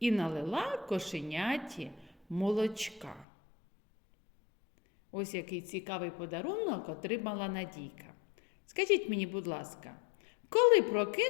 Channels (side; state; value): right; drops out; at 3.2 s